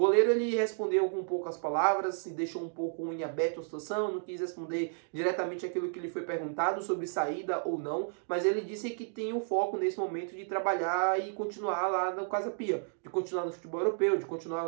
ele respondeu com poucas palavras, se deixou um pouco em aberto a situação, não quis responder diretamente aquilo que lhe foi perguntado sobre saída ou não, mas ele disse que tem o foco nesse momento de trabalhar e continuar lá no Casa Pia, de continuar no futebol europeu, de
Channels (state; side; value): silent; left; digital silence